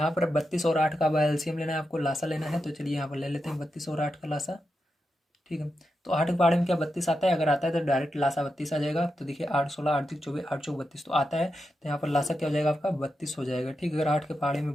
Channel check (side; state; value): both; normal; correlation 0.88